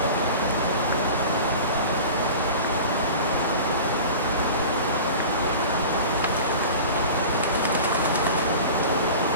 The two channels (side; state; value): both; inverted; correlation -0.37